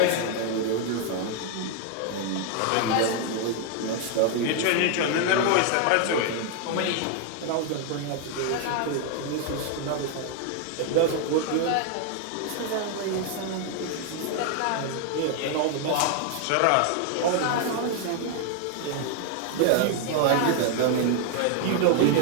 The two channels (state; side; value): different; both; correlation 0.00